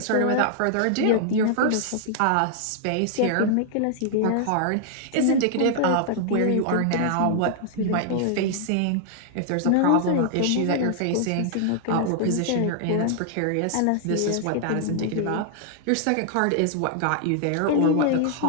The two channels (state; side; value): different; both; correlation -0.01